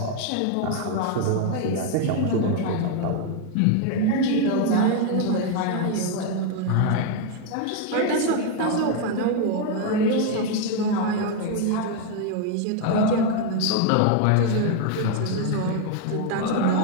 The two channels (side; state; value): both; different; correlation 0.01